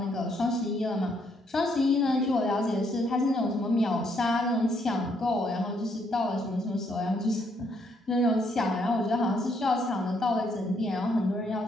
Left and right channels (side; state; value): both; normal; correlation 0.72